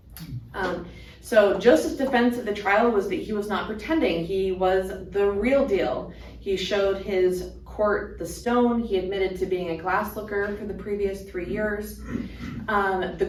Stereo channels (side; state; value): both; identical; correlation 1.00